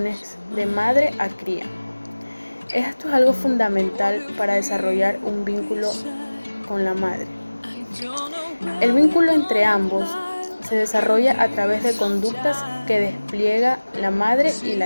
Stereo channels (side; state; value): both; inverted; correlation -1.00